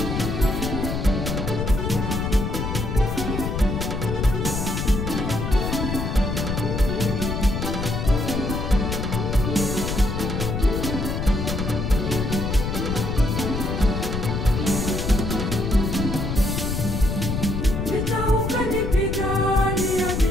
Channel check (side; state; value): left; noise; rumble, 2 dB below the sound